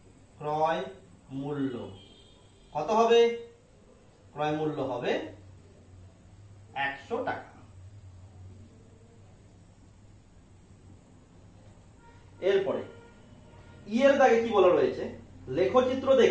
কত হবে? ক্রয় মূল্য হবে 100 টাকা। এরপরে ই এর দাগে কি বলা রয়েছে? লেখচিত্র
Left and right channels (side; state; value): both; identical; correlation 1.00